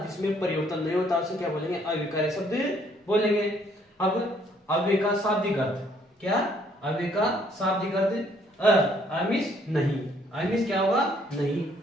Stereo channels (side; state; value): both; normal; correlation 0.65